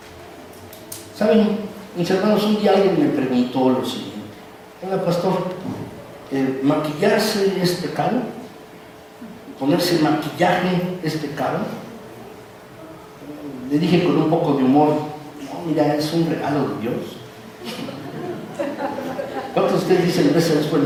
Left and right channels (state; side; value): identical; both; correlation 1.00